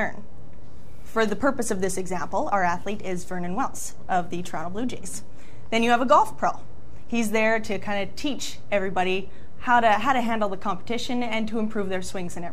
For the purpose of this example, our athlete is Vernon Wells of the Toronto Blue Jays. Then you have a golf pro. He's there to kind of teach everybody how to handle the competition and to improve their swings and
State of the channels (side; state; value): both; identical; correlation 1.00